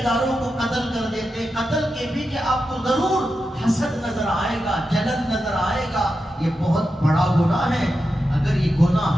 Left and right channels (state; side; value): normal; both; correlation 0.89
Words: داروں کو قتل کر دیتے۔ قتل کے پیچھے آپ کو ضرور حسد نظر آئے گا، جلن نظر آئے گا۔ یہ بہت بڑا گناہ ہے۔ اگر یہ